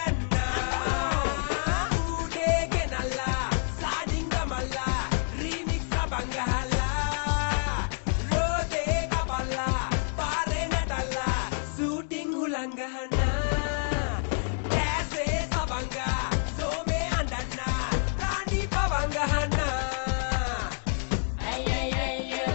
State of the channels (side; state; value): right; silent; 59 dB below the other